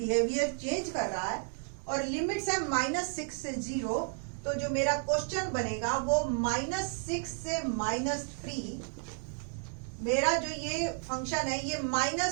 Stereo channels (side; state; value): left; silent; 56 dB below the other